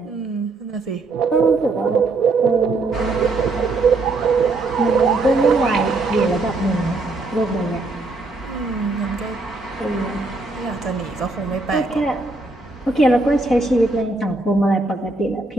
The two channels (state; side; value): quieter; left; 3.3 dB